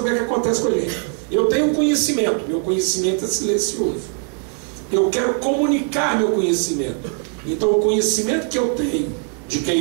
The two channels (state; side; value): quieter; left; 39.9 dB